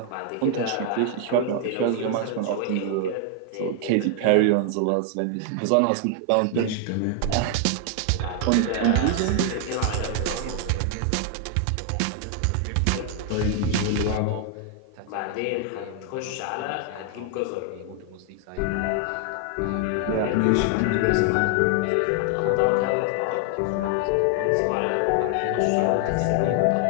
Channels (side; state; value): both; different; correlation 0.00